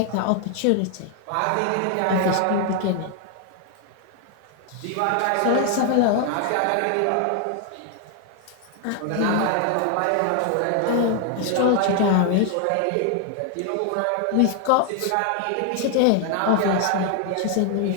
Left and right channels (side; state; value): both; different; correlation 0.00